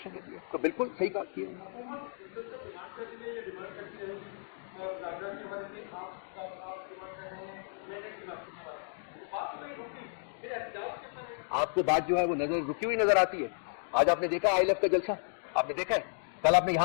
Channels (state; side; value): silent; right; digital silence